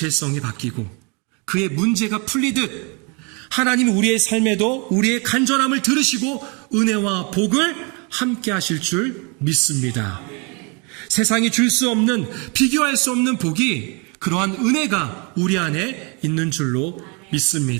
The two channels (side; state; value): left; quieter; 32.8 dB